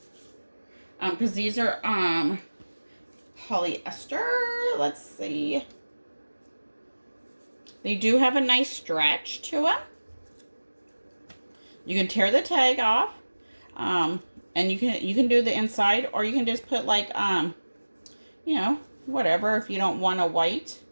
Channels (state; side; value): inverted; both; correlation -1.00